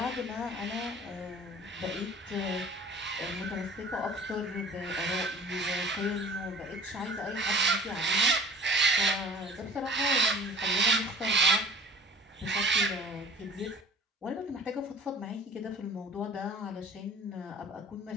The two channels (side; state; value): both; normal; correlation 0.46